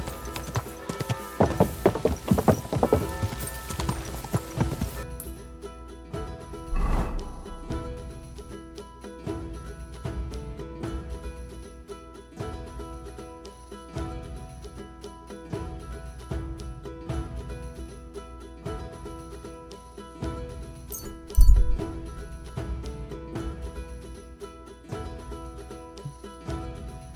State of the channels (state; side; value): identical; both; correlation 1.00